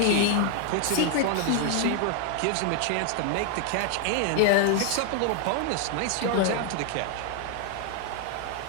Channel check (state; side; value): different; both; correlation 0.00